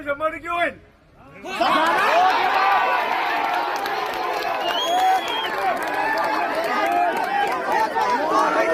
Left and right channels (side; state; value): both; identical; correlation 1.00